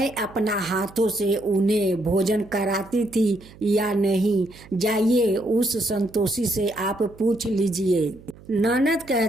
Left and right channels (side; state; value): right; noise; hum, 22 dB below the sound